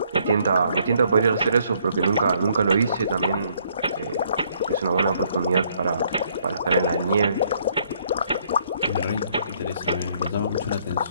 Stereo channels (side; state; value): both; inverted; correlation -0.67